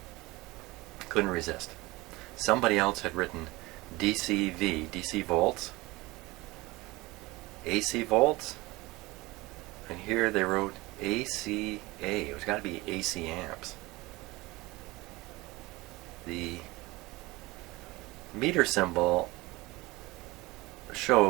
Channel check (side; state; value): left; quieter; 21.5 dB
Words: Couldn't resist. Somebody else had written DC volts AC volts, and here they wrote ACA. It's got to be AC amps. The meter symbol